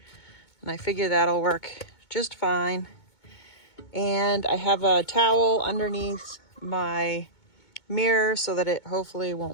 And I figure that'll work just fine. And I have a towel underneath my mirror so that it hopefully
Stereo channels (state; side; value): late; right; 2.2 ms